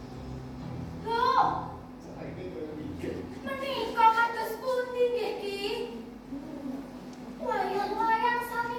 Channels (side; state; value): both; identical; correlation 1.00